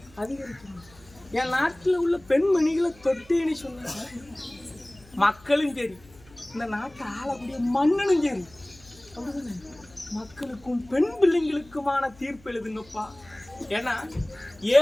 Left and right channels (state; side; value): noise; left; hum, 25 dB below the sound